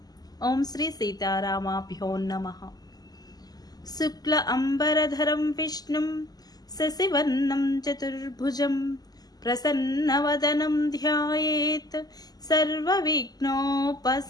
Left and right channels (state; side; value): late; right; 0.19 ms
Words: ఓం శ్రీ సీతారామాభ్యో నమః. శుక్ల అంబరధరం విష్ణుం శశివర్ణం చతుర్భుజం ప్రసన్నవదనం ధ్యాయేత్ సర్వవిఘ్నోపశాంతయే.